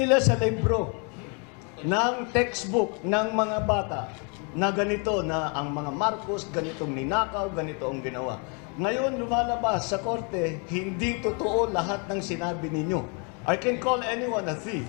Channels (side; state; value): right; quieter; 35.9 dB